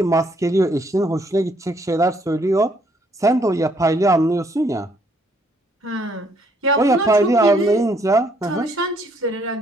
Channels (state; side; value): normal; both; correlation 0.68